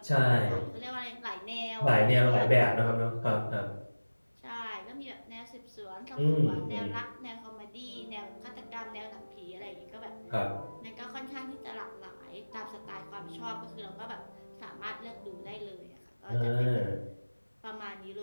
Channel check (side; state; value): both; inverted; correlation -1.00